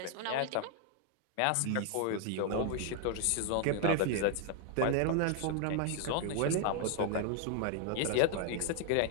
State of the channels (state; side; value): different; both; correlation 0.00